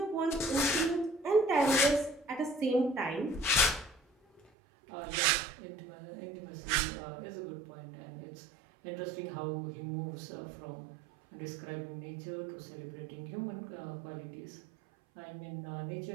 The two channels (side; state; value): left; drops out; at 4.5 s